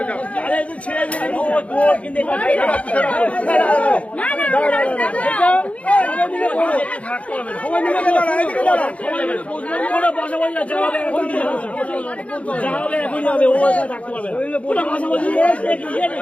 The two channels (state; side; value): late; right; 0.064 ms